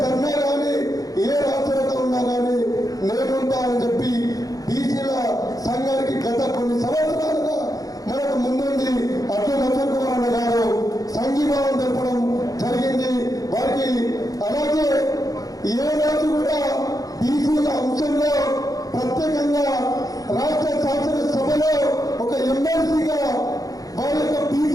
ధర్నా కానీ, ఏ రాష్ట్రంతో ఉన్నా కానీ నేనుంటా అని చెప్పి బీసీల సంఘానికి గత కొన్ని సంవత్సరాలుగా మనకు ముందుండి అడ్డూ లక్ష్మణ్ కుమార్ అన్న గారు సంఘీభావం తెలపడం జరిగింది వారికి. అలాగే ఏ రోజు కూడా బీసీల అంశంలో ప్రత్యేకంగా రాష్ట్ర శాసనసభలో ఒక ఎమ్మెల్సీగా వారి యొక్క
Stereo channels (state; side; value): late; right; 0.17 ms